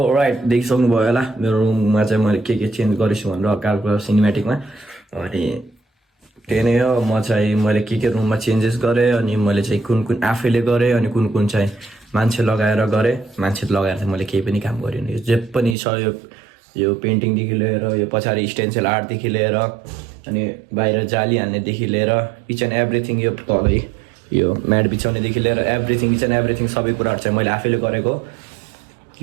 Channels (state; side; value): drops out; left; at 15.8 s